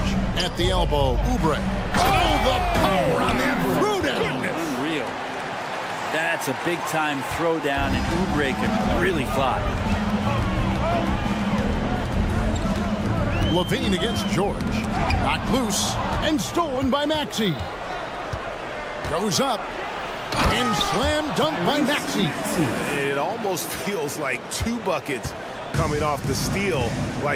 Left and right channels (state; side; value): identical; both; correlation 1.00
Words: at the elbow. Oubre. Oh, the power on that throwdown. Unreal. That's a big-time throwdown, and Oubre can really fly. Levine against George. Knocked loose and stolen by Maxey. Goes up and slam dunk by Maxey. It almost feels like 2 buckets coming off the steal